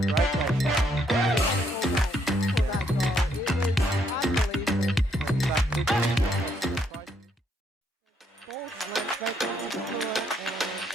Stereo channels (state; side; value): normal; both; correlation 0.73